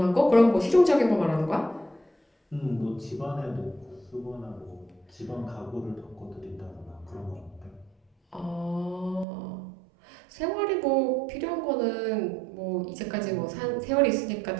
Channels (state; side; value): drops out; left; at 9.2 s